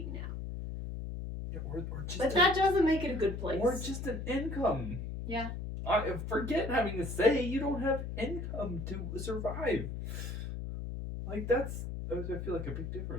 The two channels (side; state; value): left; noise; hum, 5 dB below the sound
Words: now. Yeah, or just but that doesn't make it a good place. Or just an income. Yeah. Forget having a say. You don't have income to survive. Like, that's, I feel like, a big